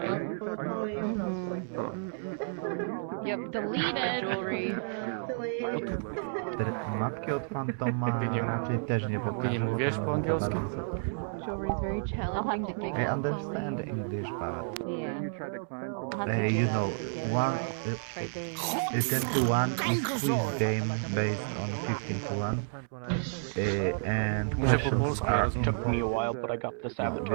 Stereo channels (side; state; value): left; silent; digital silence